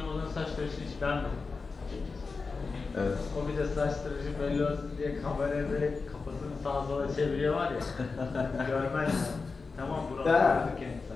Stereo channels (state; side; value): quieter; right; 4.4 dB